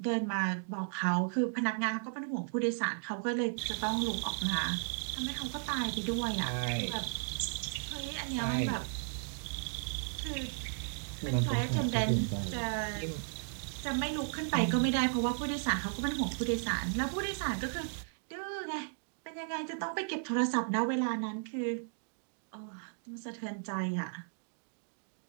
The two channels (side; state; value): left; silent; digital silence